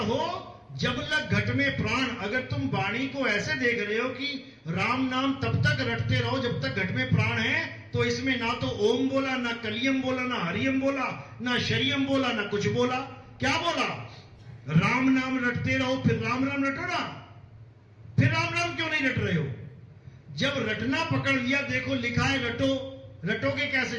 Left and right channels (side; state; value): both; identical; correlation 1.00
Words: जब लग घट में प्राण। अगर तुम वाणी को ऐसे देख रहे हो कि राम नाम तब तक रटते रहो जब तक घट में प्राण है, तो इसमें ना तो ओम बोला, ना कलियम बोला, ना हरियम बोला, ना शरियम बोला, ना कुछ बोला। क्या बोला? राम नाम रटते रहो। फिर राम राम रटो ना, फिर राम राम क्यों नहीं रट रहे हो? जब रटना पकड़ लिया, देखो लिखा है रटो। रटोगे कैसे?